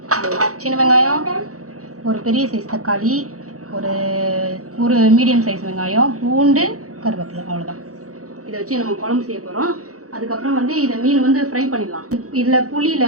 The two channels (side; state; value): left; late; 0.65 ms